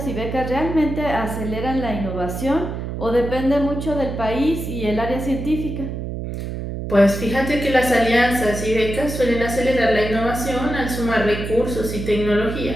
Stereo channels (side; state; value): right; noise; hum, 5 dB below the sound